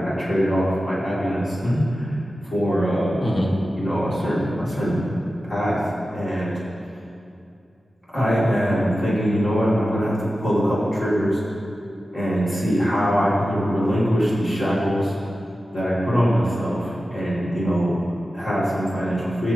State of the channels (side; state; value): both; normal; correlation 0.93